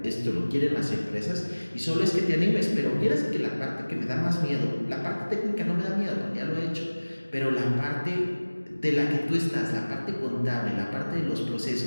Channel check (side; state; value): both; inverted; correlation -1.00